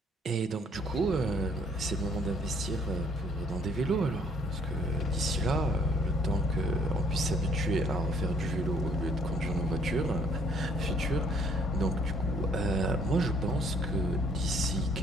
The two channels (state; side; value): normal; both; correlation 0.63